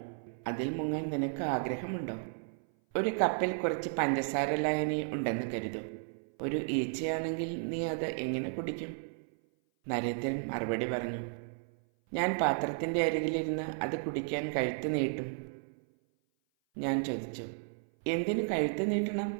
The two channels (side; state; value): left; silent; 55 dB below the other